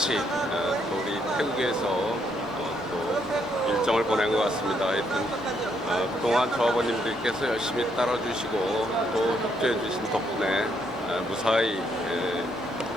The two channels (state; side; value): normal; both; correlation 0.73